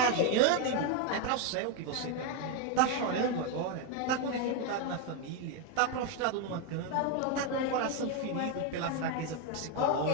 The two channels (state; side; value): different; both; correlation 0.01